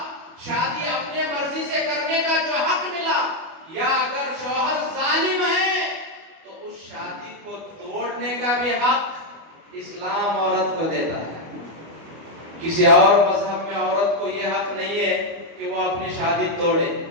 شادی اپنے مرضی سے کرنے کا جو حق ملا، یا اگر شوہر ظالم ہے تو اس شادی کو توڑنے کا بھی حق اسلام عورت کو دیتا ہے۔ کسی اور مذہب میں عورت کو یہ حق نہیں ہے کہ وہ اپنی شادی توڑے،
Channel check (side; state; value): left; late; 25 ms